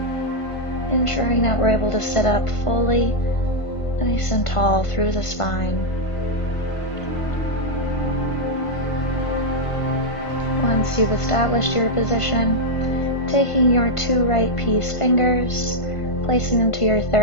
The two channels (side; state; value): right; late; 1.5 ms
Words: Ensuring that we're able to sit up fully, nice and tall through the spine. Once you've established your position, taking your 2 right peace fingers, placing them to your